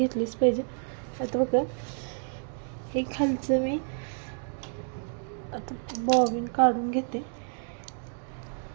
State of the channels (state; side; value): silent; left; 58 dB below the other